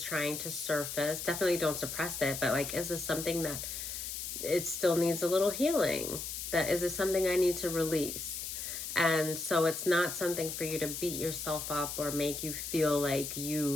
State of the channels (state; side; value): noise; left; hiss, 6 dB below the sound